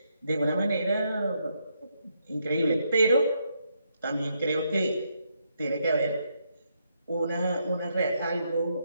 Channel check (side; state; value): both; inverted; correlation -0.77